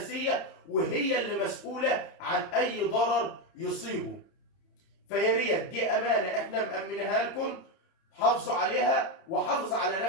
وهي اللي مسؤوله عن اي ضرر يصيبه. فيا ريت دي امانه احنا مامنها لكم، حافظوا عليها وحافظ على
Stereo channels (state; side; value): late; right; 30 ms